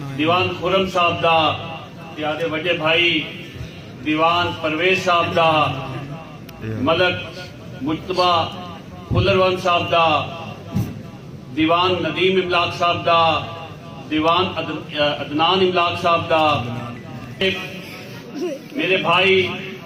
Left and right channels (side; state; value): both; identical; correlation 1.00